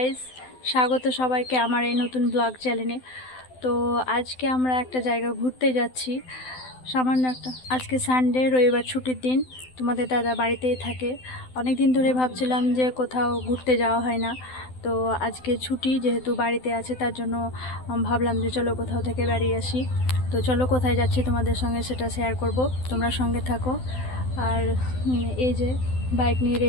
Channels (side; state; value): right; late; 12 ms